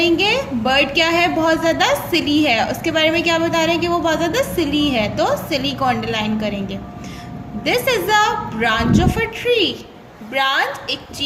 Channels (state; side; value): identical; both; correlation 1.00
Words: बर्ड क्या है, बहुत ज़्यादा सिली है, उसके बारे में क्या बता रहे हैं कि वो बहुत ज़्यादा सिली है, तो सिली को अंडरलाइन करेंगे। This is a branch of a tree, branch एक